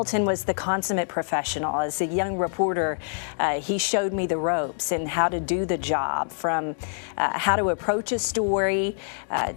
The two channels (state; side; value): silent; right; digital silence